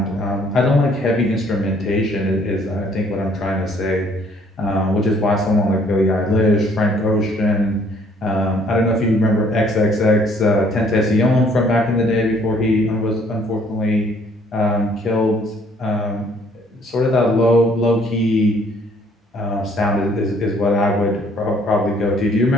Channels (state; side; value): normal; both; correlation 0.61